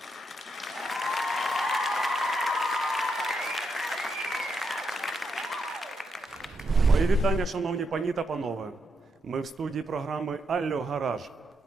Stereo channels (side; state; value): both; normal; correlation 0.81